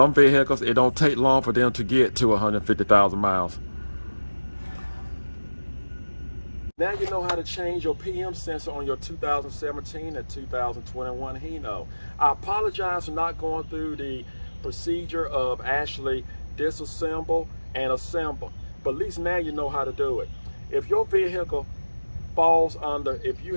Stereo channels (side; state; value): both; inverted; correlation -1.00